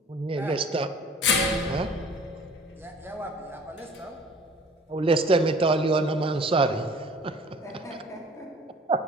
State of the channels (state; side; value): normal; both; correlation 0.48